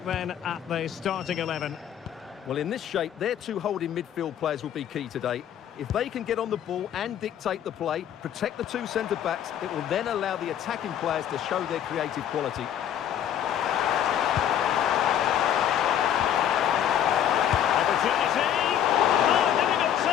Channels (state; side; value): quieter; right; 10.1 dB